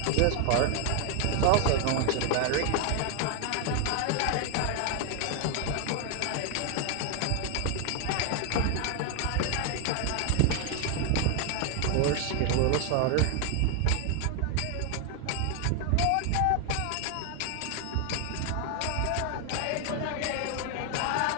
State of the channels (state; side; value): different; both; correlation 0.01